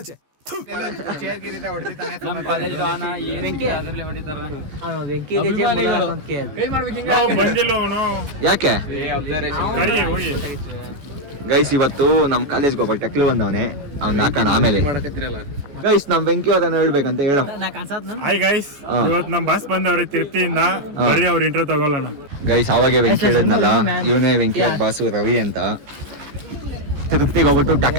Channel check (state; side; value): late; left; 14 ms